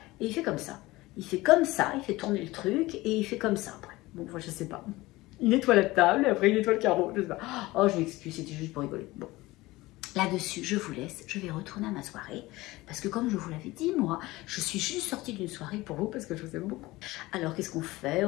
et il fait comme ça. Il fait comme ça, il fait tourner le truc et il fait comme ça après. Bon, moi, je sais pas. Il nettoie la table et après il nettoie le carreau. Je sais pas. Oh, je m'excuse, c'était juste pour rigoler. Bon. Là-dessus, je vous laisse, je vais retourner à ma soirée, parce que comme je vous l'avais dit, moi, je suis juste sortie d'une soirée pour vous, parce que je vous aime beaucoup. Alors, qu'est-ce qu'on fait?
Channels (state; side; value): quieter; right; 19.6 dB